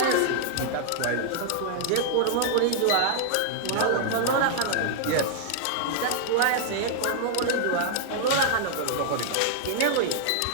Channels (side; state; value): both; different; correlation -0.01